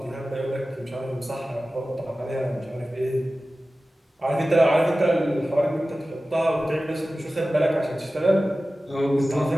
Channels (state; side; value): normal; both; correlation 0.95